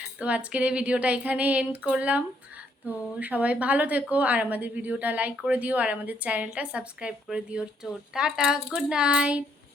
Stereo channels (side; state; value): both; normal; correlation 0.71